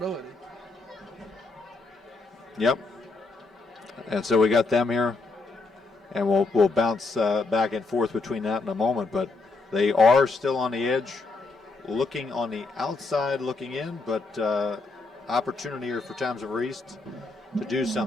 Yep. And so we got them here, and we'll bounce back and forth between that in a moment, but they are still on the edge, looking on the outside, looking in, but opportunity here for Toms of East to do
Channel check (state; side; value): quieter; right; 3.7 dB